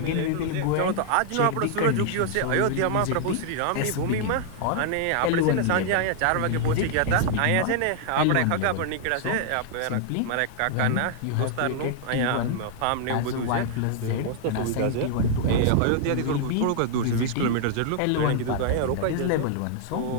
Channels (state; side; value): different; both; correlation -0.01